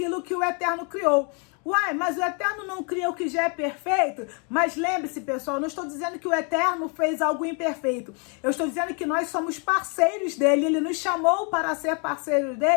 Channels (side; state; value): right; quieter; 36.6 dB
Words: que o Eterno criou. Uai, mas o Eterno não cria o que já é perfeito? Mas lembre-se, pessoal, não estou dizendo que o Eterno fez algo imperfeito. Eu estou dizendo que nós somos parceiros dele. Ele nos chamou para ser parceiros